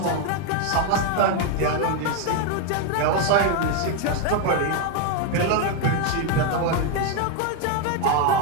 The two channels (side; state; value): both; different; correlation 0.01